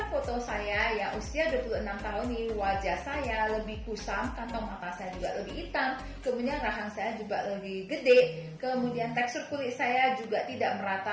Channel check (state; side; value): identical; both; correlation 1.00